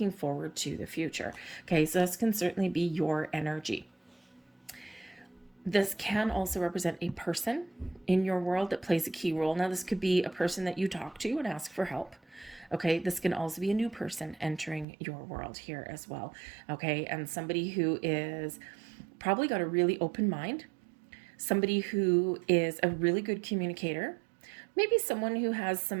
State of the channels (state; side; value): drops out; left; at 14.9 s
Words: forward to the future. Okay, so this can certainly be your energy. This can also represent a person in your world that plays a key role. Now, this could be a person that you talk to and ask for help. Okay, this can also be a new person entering your world here as well. Okay, and somebody who is probably got a really open mind, somebody who is a really good communicator, maybe someone who has